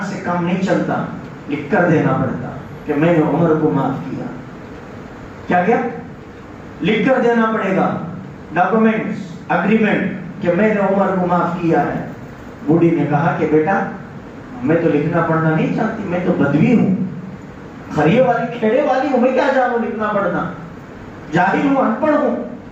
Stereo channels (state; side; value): identical; both; correlation 1.00